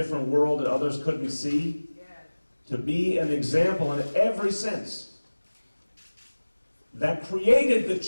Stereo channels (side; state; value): both; inverted; correlation -1.00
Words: world that others couldn't see, to be an example in every sense that created the